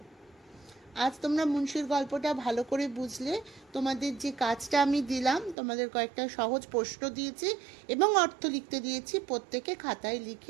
আজ তোমরা মুন্সির গল্পটা ভালো করে বুঝলে। তোমাদের যে কাজটা আমি দিলাম, তোমাদের কয়েকটা সহজ প্রশ্ন দিয়েছি এবং অর্থ লিখতে দিয়েছি, প্রত্যেকে খাতায়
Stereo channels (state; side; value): drops out; left; at 5.6 s